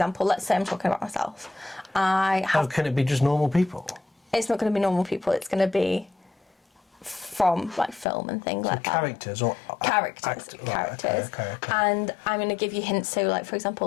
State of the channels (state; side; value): drops out; right; at 8.1 s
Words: let's say I'm talking about myself. How can it be just normal people? It's not going to be normal people. It's going to be from like film and things like that. Characters or characters. Right, okay. And I'm going to give you hints. So, like for